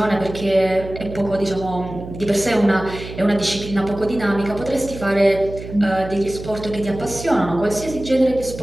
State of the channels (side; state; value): right; noise; hum, 11 dB below the sound